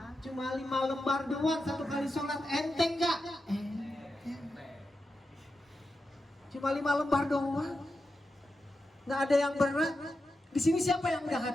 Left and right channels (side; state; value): both; normal; correlation 0.89